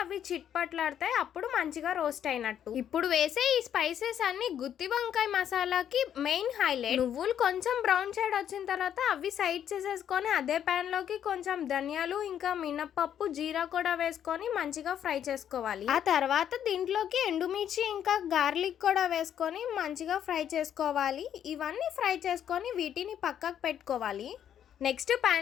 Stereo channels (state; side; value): quieter; right; 9.6 dB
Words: అవి చిట్పట్లాడతాయి, అప్పుడు మంచిగా రోస్ట్ అయినట్టు. ఇప్పుడు వేసే ఈ స్పైసెస్ అన్ని గుత్తి వంకాయ మసాలాకి మెయిన్ హైలైట్. నువ్వులు కొంచెం బ్రౌన్ షేడ్ వచ్చిన తర్వాత అవి సైడ్ చేసేసుకొని అదే ప్యాన్ లోకి కొంచెం ధనియాలు ఇంకా మినపప్పు జీరా కూడా వేసుకొని మంచిగా ఫ్రై చేసుకోవాలి. ఆ తర్వాత దీంట్లోకి ఎండుమిర్చి ఇంకా గార్లిక్ కూడా వేసుకొని మంచిగా ఫ్రై చేసుకోవాలి. ఇవన్నీ ఫ్రై చేసుకొని వీటిని పక్కకు పెట్టుకోవాలి. నెక్స్ట్